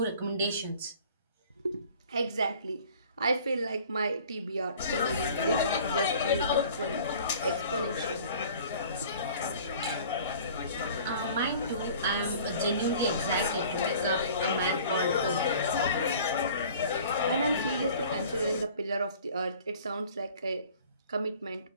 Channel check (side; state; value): both; inverted; correlation -0.48